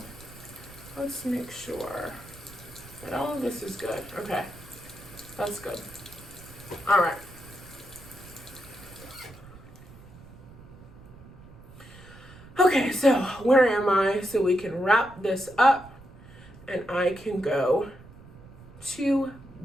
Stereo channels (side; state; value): right; noise; rumble, 19 dB below the sound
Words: let's make sure that all of this is good. Okay, that's good. All right. Okay, so where am I? So we can wrap this up and I can go to